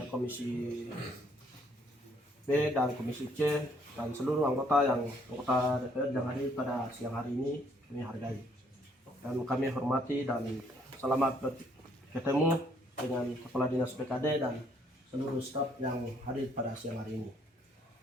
Komisi B dan Komisi C, dan seluruh anggota DPR yang hadir pada siang hari ini, kami hargai. Dan kami hormati dan selamat bertemu dengan Kepala Dinas BKD dan seluruh staf yang hadir pada siang hari ini.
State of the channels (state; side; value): normal; both; correlation 0.66